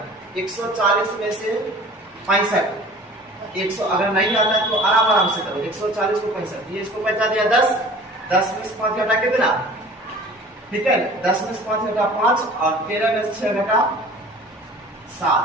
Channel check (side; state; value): both; normal; correlation 0.45